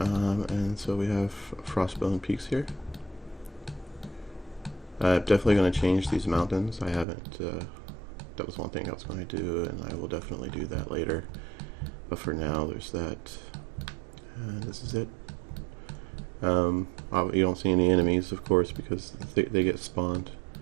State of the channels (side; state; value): left; drops out; at 7.1 s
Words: so we have Frostbitten Peaks here. I'm definitely going to change these mountains. I haven't. That was one thing I was going to do, and I will definitely do that later. But for now, there's that. And this is it. You don't see any enemies, of course, because they get spawned